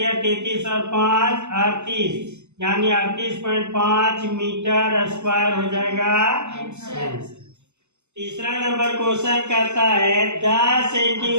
33 और 5 38 यानी 38.5 मीटर स्क्वायर हो जाएगा। तीसरा नंबर क्वेश्चन कहता है 10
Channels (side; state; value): left; late; 0.83 ms